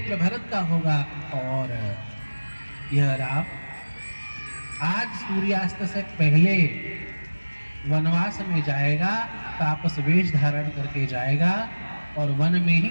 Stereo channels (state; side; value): inverted; both; correlation -1.00